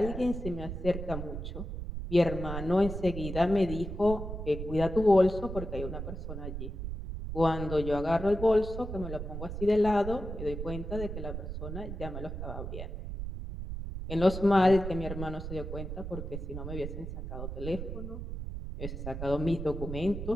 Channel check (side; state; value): right; noise; rumble, 6 dB below the sound